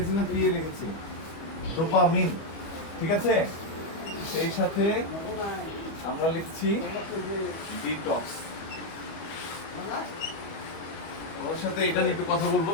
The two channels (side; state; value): right; late; 25 ms